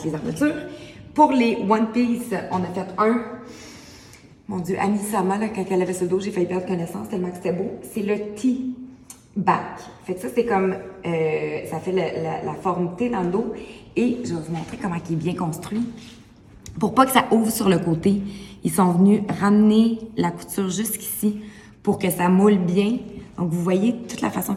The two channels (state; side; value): identical; both; correlation 1.00